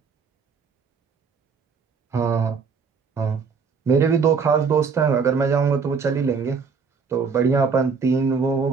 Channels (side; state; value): left; quieter; 5.5 dB